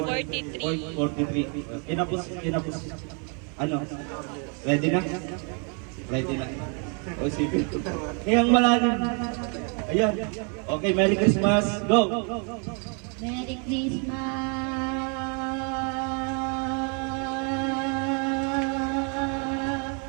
Kinapos. Ano? Ready na? Ready na. O sige. Ngayang malalim. Ayan. Okay, Merry Christmas. Go! Merry Christmas!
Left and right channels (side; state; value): left; quieter; 38.5 dB